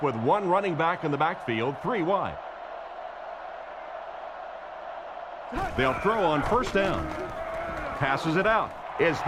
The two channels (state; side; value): identical; both; correlation 1.00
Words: with one running back in the backfield, 3 wide. They'll throw on first down. Passes it out. Is